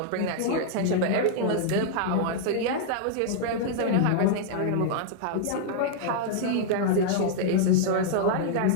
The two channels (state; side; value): different; both; correlation -0.01